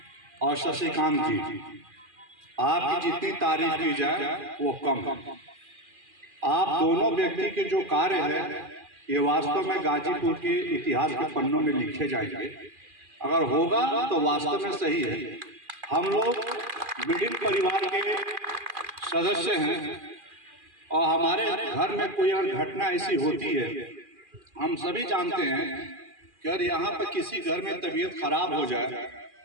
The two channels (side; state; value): left; late; 2.4 ms